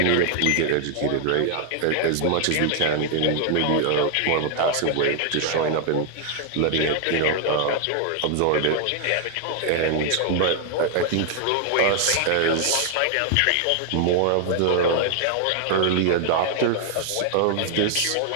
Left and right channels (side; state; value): both; different; correlation 0.00